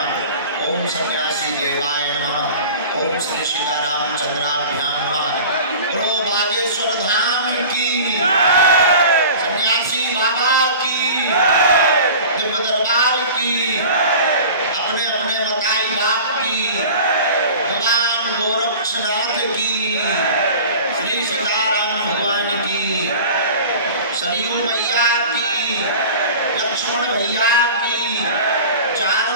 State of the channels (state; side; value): inverted; both; correlation -0.39